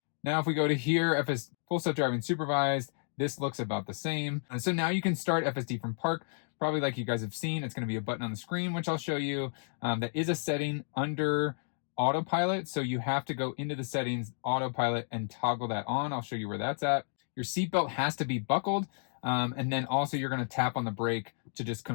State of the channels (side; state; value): right; silent; digital silence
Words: Now, if we go to here, Full Self-Driving Supervised, this looks about the same. So now you can start FSD from park, probably like you guys have seen. It's going to be a button on the screen, which I'll show you. That is a setting under Autopilot, so you have to go into the settings, Autopilot, and toggle that on. I'll show you where that's at. Your seatbelt has to be buckled, and then also you're going to tap on the brake to just